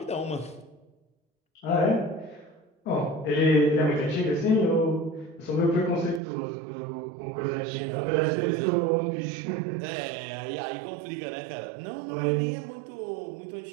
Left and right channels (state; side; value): drops out; left; at 6.2 s